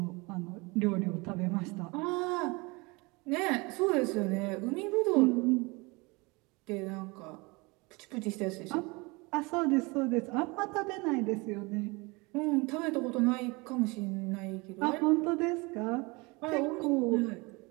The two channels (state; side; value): quieter; left; 26.3 dB